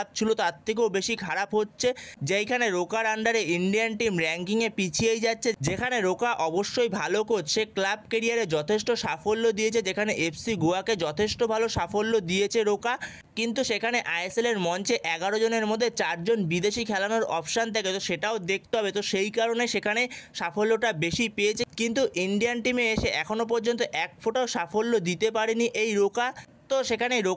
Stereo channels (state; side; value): identical; both; correlation 1.00